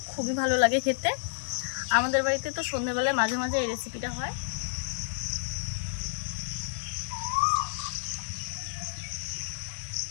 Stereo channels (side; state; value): right; silent; digital silence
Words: খুবই ভালো লাগে খেতে। আমাদের বাড়িতে তো সন্ধ্যেবেলায় মাঝে মাঝে এই রেসিপিটা হয়।